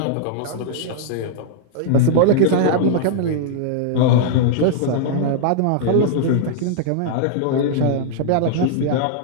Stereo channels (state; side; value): different; both; correlation -0.01